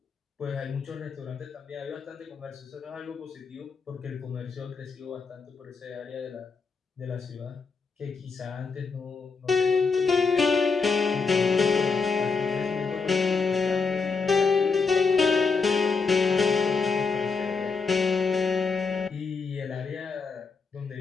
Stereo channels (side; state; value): right; quieter; 4.9 dB